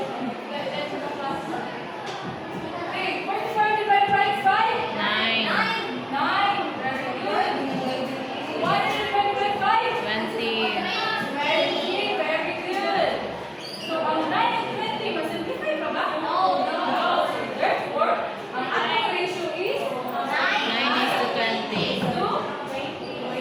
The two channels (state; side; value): identical; both; correlation 1.00